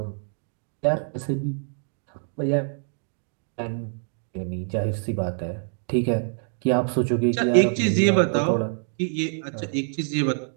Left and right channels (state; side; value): silent; left; digital silence